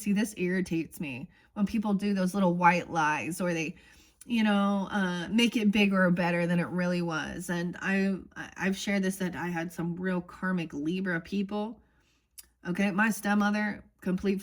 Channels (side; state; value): both; identical; correlation 1.00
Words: this irritates me when people do those little white lies, or they make it bigger or better than it really was. And I've shared this, that I had some real karmic Libra people. Okay, my stepmother, complete